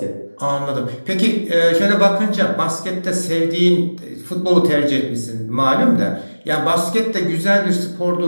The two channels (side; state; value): both; inverted; correlation -1.00